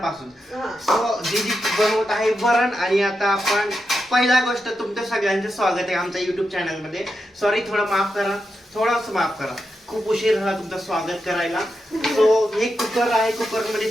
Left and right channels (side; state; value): both; normal; correlation 0.87